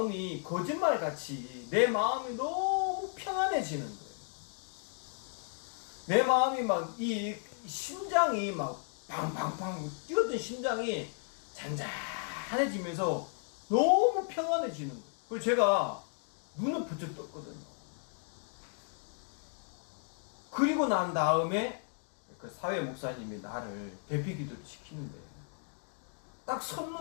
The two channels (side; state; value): right; silent; 55 dB below the other